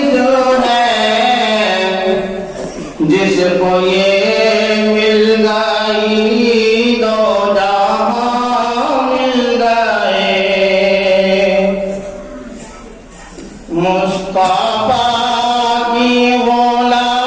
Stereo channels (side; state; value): both; identical; correlation 1.00